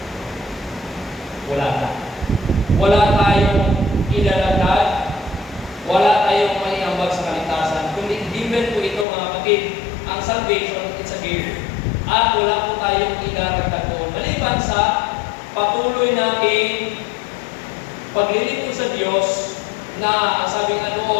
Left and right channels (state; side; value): drops out; right; at 9.1 s